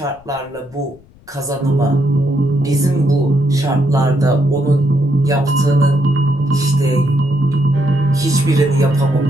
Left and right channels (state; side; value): noise; left; rumble, 27 dB below the sound